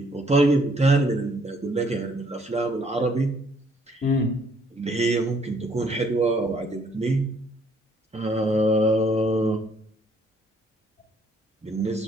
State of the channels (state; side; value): normal; both; correlation 0.65